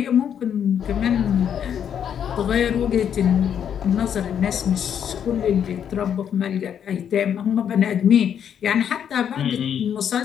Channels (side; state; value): right; quieter; 8.7 dB